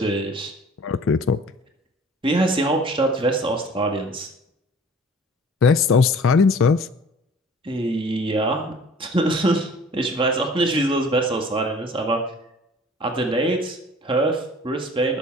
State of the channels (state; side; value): normal; both; correlation 0.48